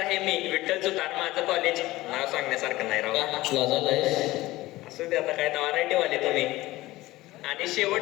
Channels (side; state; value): right; quieter; 18.2 dB